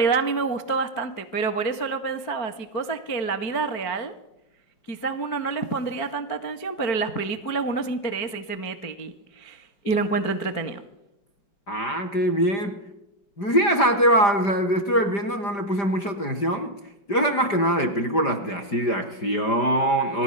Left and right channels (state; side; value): late; right; 5.0 ms